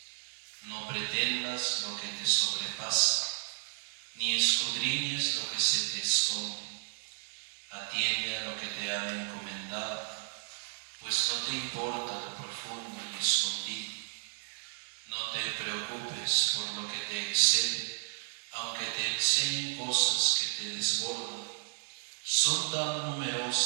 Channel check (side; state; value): left; silent; 56 dB below the other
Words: No pretendas lo que te sobrepasa, ni escudriñes lo que se te esconde. Atiende a lo que te han encomendado, pues no te importa lo profundo y escondido. No te preocupes por lo que te excede, aunque te enseñen cosas que te desbordan. Son tan